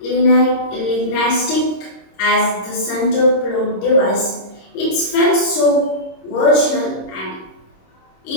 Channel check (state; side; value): late; right; 26 ms